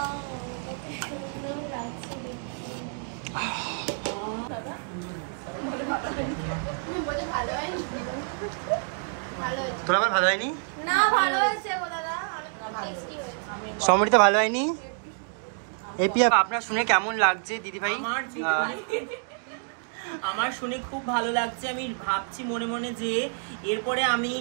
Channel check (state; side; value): silent; left; 59 dB below the other